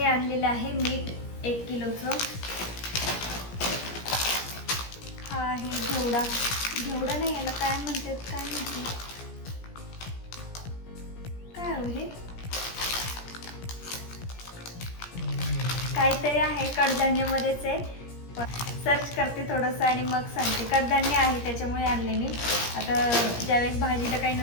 आणलेलं आहे मीठ 1 किलोचं. हा आहे घेवडा नाही, याला काय म्हणते काय हो हे काहीतरी आहे, कडधान्यामध्येच आहे. सर्च करते थोडंसं आणि मग सांगते. कडधान्य आहे त्याच्यामुळे आणले मी. आता ज्यावेळेस भाजीला काही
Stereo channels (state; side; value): late; right; 17 ms